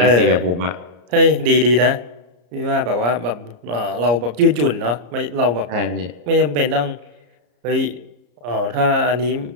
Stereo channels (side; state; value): left; late; 34 ms